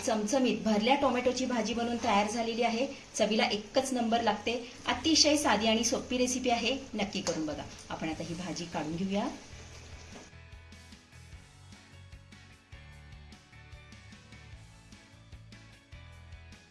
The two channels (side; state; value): both; identical; correlation 1.00